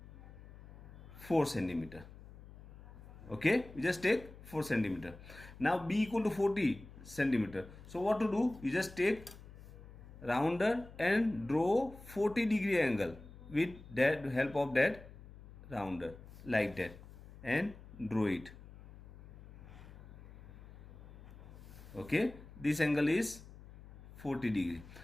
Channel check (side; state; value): left; noise; hum, 17 dB below the sound